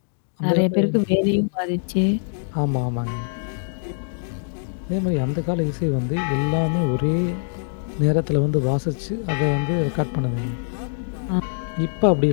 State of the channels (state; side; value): silent; right; digital silence